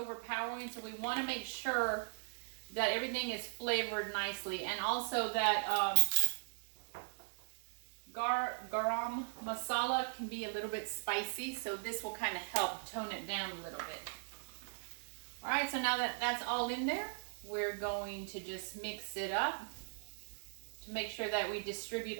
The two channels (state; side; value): silent; left; digital silence